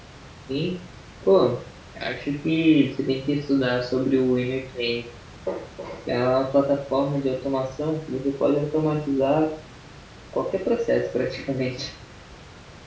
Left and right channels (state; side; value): identical; both; correlation 1.00